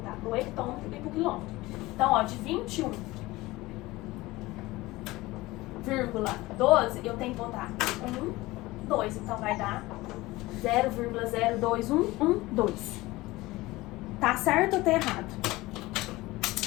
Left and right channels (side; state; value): right; quieter; 19.7 dB